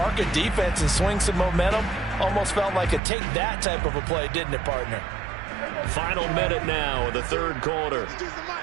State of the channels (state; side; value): drops out; left; at 3.0 s